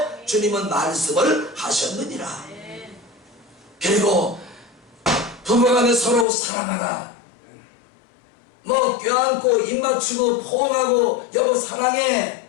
주님은 말씀을 하셨느니라. 그리고 부부간에 서로 사랑하라. 뭐 껴안고 입 맞추고 포옹하고 여보 사랑해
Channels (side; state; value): right; drops out; at 6.2 s